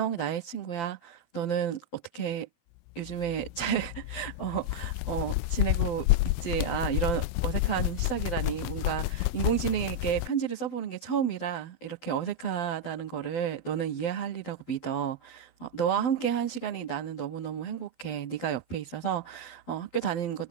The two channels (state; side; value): late; right; 12 ms